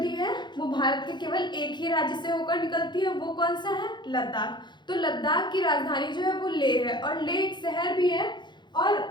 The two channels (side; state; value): right; late; 0.22 ms